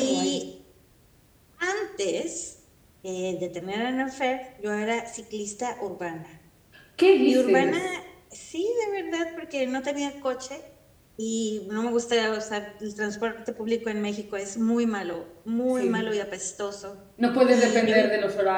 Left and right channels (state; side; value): identical; both; correlation 1.00